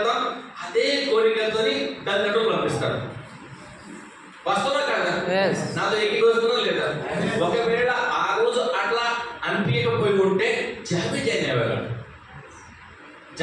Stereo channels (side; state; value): both; identical; correlation 1.00